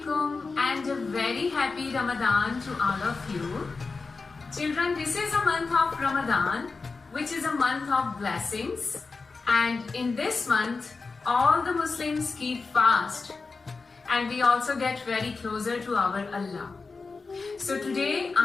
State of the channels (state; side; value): quieter; right; 4.2 dB